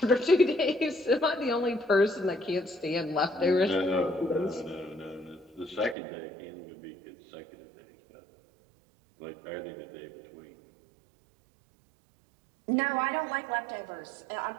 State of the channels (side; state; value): left; drops out; at 6.0 s